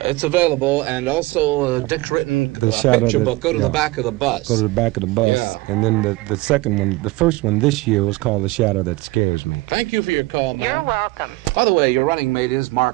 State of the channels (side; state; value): left; quieter; 21.4 dB